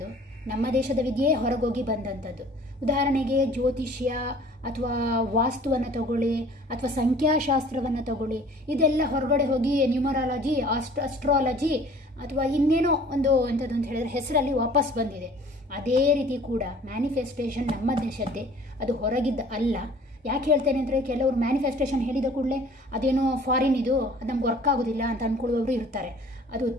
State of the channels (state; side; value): normal; both; correlation 0.50